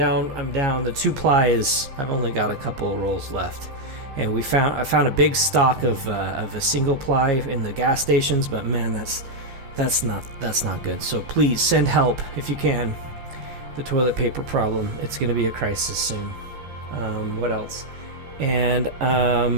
The 2-ply is. I've only got a couple of rolls left. And I found a big stock of a single ply in the gas stations, but man, that's not good. So please send help if you can. The toilet paper problem, it's going to be a crisis soon. What else? And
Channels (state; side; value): late; left; 14 ms